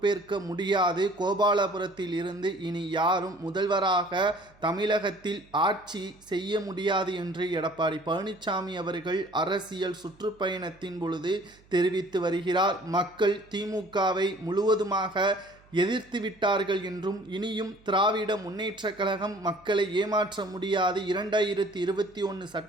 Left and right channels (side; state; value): right; noise; hum, 28 dB below the sound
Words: முடியாது. கோபாலபுரத்தில் இருந்து இனி யாரும் முதல்வராக தமிழகத்தில் ஆட்சி செய்ய முடியாது என்று எடப்பாடி பழனிசாமி அவர்கள் அரசியல் சுற்றுப்பயணத்தின் பொழுது தெரிவித்து வருகிறார். மக்கள் திமுகவை முழுவதுமாக எதிர்த்து விட்டார்கள் என்றும் இனியும் திராவிட முன்னேற்ற கழகம் மக்களை ஏமாற்ற முடியாது. 2021